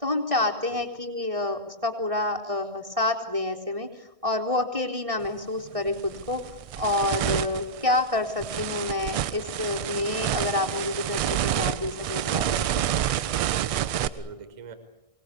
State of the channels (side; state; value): left; late; 1.6 ms